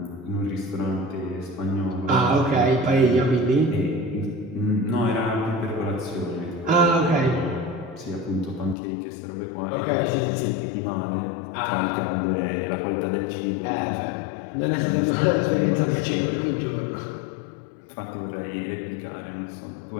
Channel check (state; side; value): drops out; right; at 8.8 s